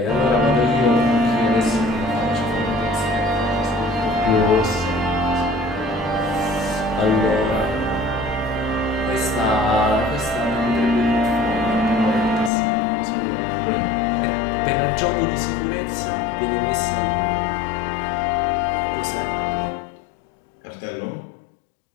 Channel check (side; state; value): right; drops out; at 12.5 s